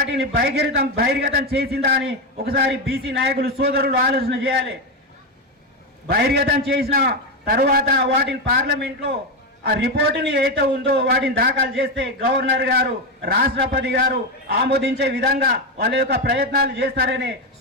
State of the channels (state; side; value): normal; both; correlation 0.11